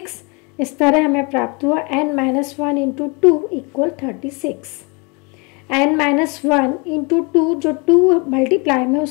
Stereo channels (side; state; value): right; quieter; 30.8 dB